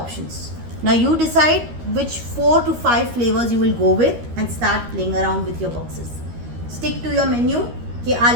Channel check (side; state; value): left; late; 13 ms